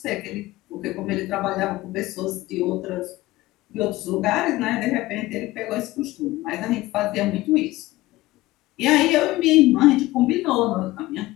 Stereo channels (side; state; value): right; quieter; 18.3 dB